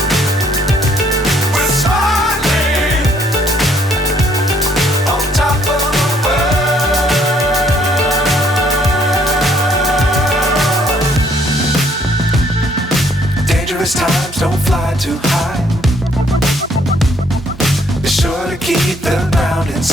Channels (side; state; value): both; normal; correlation 0.66